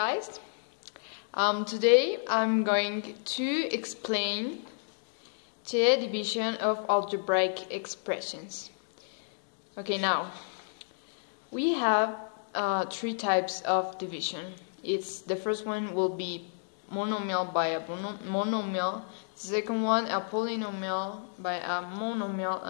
Today I'm going to explain the division of algebraic expressions. Okay, now we have three types of division. The first one will be monomial by a monomial, the second one a polynomial by a monomial,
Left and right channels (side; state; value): right; silent; digital silence